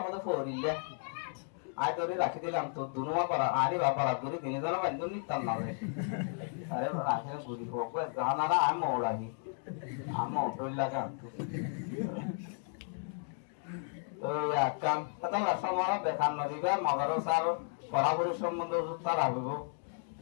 মতে ফরিলে আই তোরে রাখি দিলাম তো দুনুমা পারা আরে বাবা রাতুরি দিনে জানা বান্দু নিতাম না রে আরে রাখে গুরি বকো জানারা আম ওড়াহি আম ওড়ল লাগা তো কাম তাহলে সমারা দেখান নদিবা মাদ্রাসার পড়াশোনার সম্বন্ধে তারা হইব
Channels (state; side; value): silent; right; 55 dB below the other